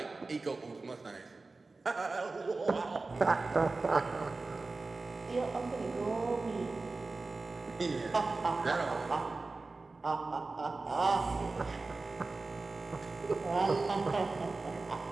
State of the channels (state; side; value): quieter; left; 3.6 dB